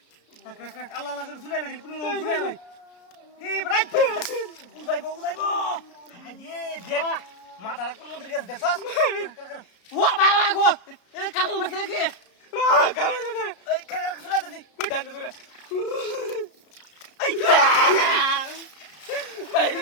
রাখ রাখ রাখ আল্লাহ আল্লাহ করে শুনে লাগি পুরো শুনে লাগি এই বেটা উদাইবো আরে দেখ মাথার কোন মন্দির কাছে দেখছস ও বাবা গো এ কামল মাছ নাকি কামল এই শুনে দে বেটা শুনে ভাই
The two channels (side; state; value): right; late; 33 ms